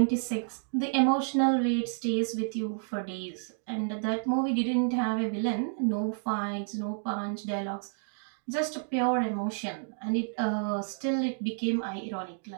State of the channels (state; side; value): silent; left; digital silence